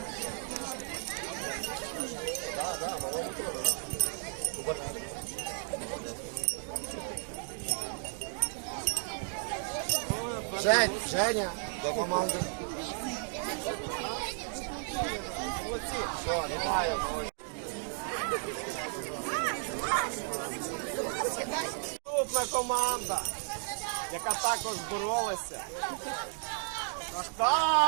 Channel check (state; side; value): silent; left; 55 dB below the other